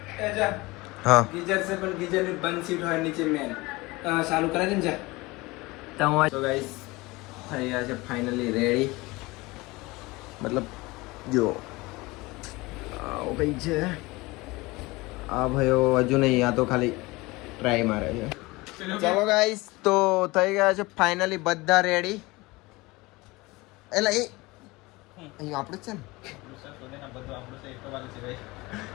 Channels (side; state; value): right; quieter; 22.3 dB